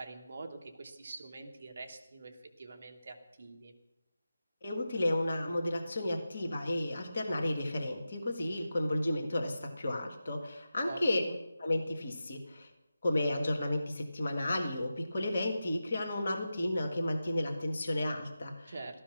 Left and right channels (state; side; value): inverted; both; correlation -0.92